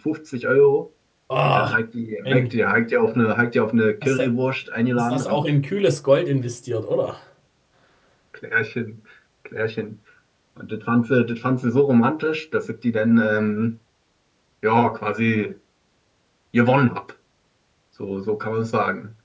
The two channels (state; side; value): identical; both; correlation 1.00